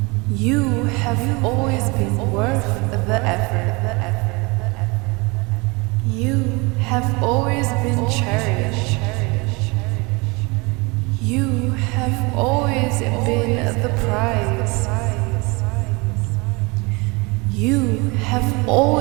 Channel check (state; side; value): quieter; left; 26.9 dB